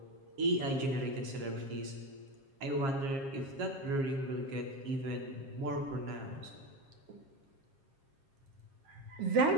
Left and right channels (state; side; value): late; left; 7.4 ms